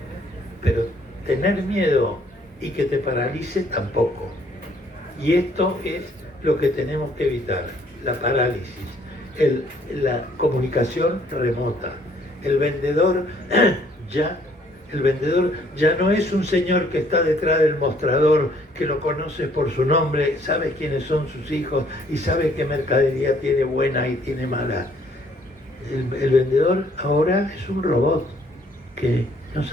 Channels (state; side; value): normal; both; correlation 0.63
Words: Pero tener miedo y que te paralice tampoco. Y esto es lo que tenemos que evitar, la parálisis, la comunicación remota. El vendedor ya no es un señor que está detrás del mostrador, que lo conoces por su nombre, sabe quiénes son sus hijos y sabe qué mercadería tiene buena y tiene mala. El vendedor ahora es un robot que no